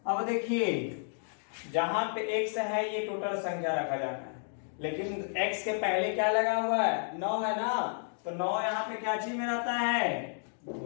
अब देखिए जहां पे x है ये टोटल संख्या रखा जाना है, लेकिन x के पहले क्या लगा हुआ है 9 है ना, तो 9 यहाँ पे क्या चीज में रहता है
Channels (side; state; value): right; silent; digital silence